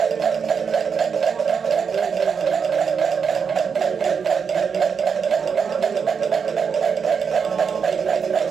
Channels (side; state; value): left; quieter; 6.3 dB